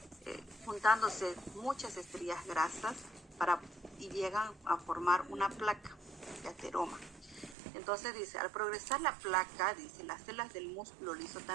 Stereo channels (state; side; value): drops out; left; at 7.6 s